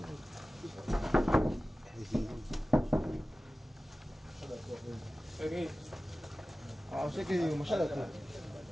kwa ushike mashada tu.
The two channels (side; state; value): both; normal; correlation 0.96